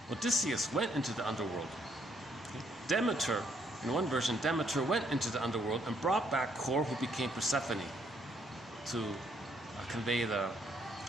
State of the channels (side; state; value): both; normal; correlation 0.70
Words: Odysseus went into the underworld. Demeter, in one version, Demeter went into the underworld and brought back Core, who became Persephone, to convey the